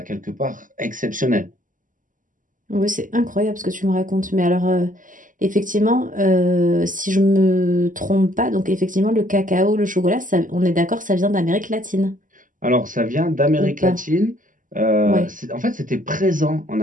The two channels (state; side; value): late; left; 0.38 ms